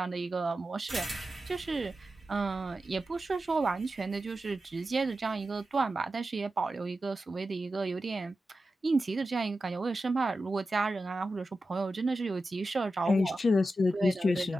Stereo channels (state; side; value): normal; both; correlation 0.92